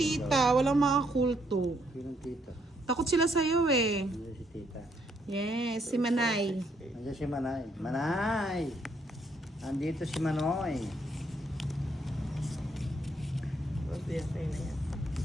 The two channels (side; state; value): both; normal; correlation 0.72